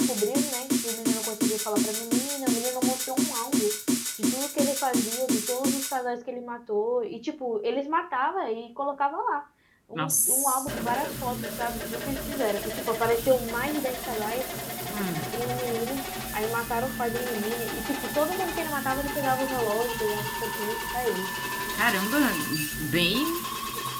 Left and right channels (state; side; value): identical; both; correlation 1.00